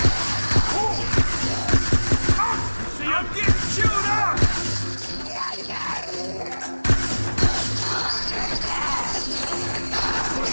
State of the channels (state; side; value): inverted; both; correlation -1.00